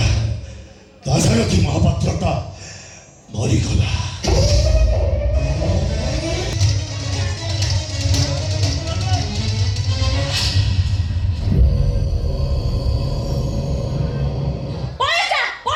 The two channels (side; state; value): both; identical; correlation 1.00